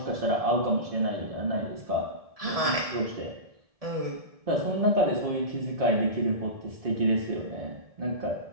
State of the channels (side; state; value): left; late; 1.7 ms